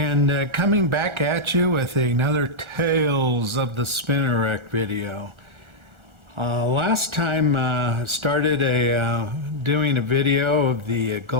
coming back at you with another Tales of the Spinnerrack video. Last time started doing a video of the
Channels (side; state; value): left; late; 1.4 ms